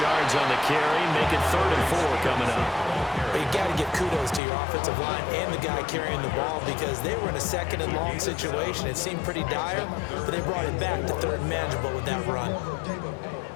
yards on the carry. Make it 3rd and 4 coming up. But you got to give kudos to your offensive line and the guy carrying the ball because they were in a 2nd and long situation. It seemed pretty dire, but they brought it back to 3rd and manageable with that run.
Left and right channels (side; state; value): right; drops out; at 4.4 s